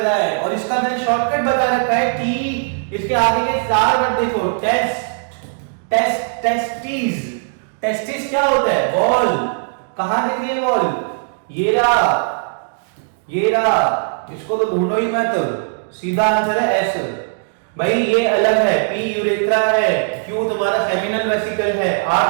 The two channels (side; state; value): left; silent; digital silence